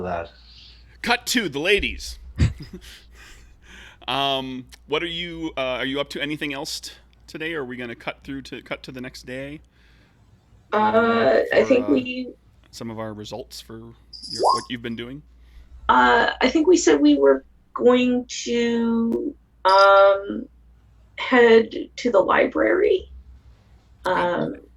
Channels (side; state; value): both; identical; correlation 1.00